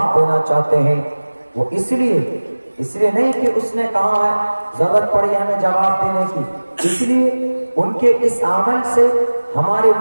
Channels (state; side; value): inverted; both; correlation -1.00